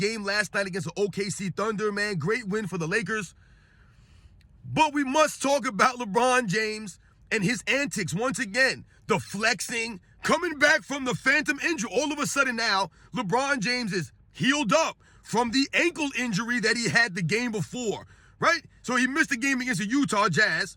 last night against the OKC Thunder, man. Great win for the Lakers. But we must talk about LeBron James and his antics once again. The flexing, coming back from the phantom injury. All of a sudden now, LeBron James is healed up from the ankle injury that he had the game before, right? So he missed the game against the Utah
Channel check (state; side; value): identical; both; correlation 1.00